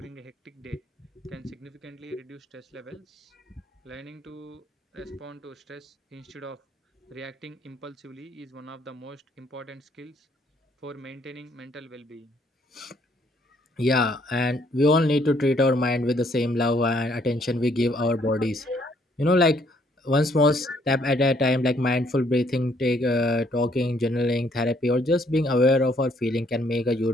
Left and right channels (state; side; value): normal; both; correlation 0.67